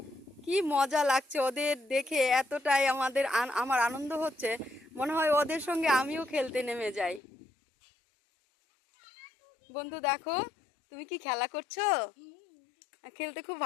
কি মজা লাগছে ওদের দেখে, এতটাই আমার আনন্দ হচ্ছে, মনে হয় ওদের সঙ্গে আমিও খেলতে নেমে যাই। বন্ধু দেখো, তুমি কি খেলা করছো? খেলতে খুব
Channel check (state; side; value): drops out; right; at 7.2 s